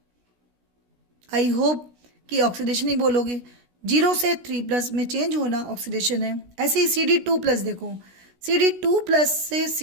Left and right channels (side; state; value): left; late; 16 ms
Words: आई होप कि ऑक्सीडेशन ही बोलोगे। 0 से 3+ में चेंज होना ऑक्सीडेशन है। ऐसे ही Cd2+, देखो Cd2+ से